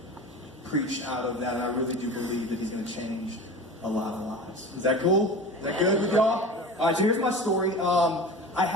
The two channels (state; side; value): normal; both; correlation 0.34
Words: preach out of that, and I really do believe that he's going to change a lot of lives. Is that cool? Is that good with y'all? All right, so here's my story. I